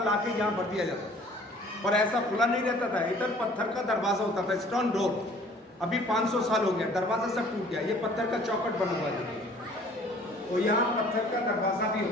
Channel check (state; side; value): normal; both; correlation 0.53